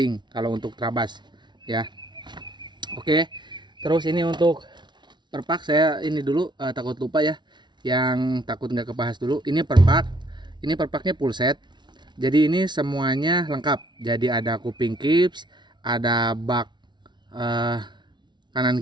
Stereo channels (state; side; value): late; left; 0.21 ms